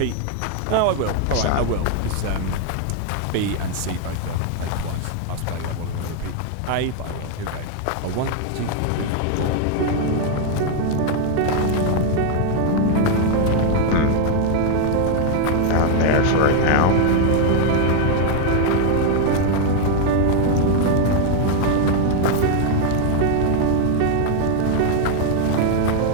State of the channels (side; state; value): both; different; correlation 0.00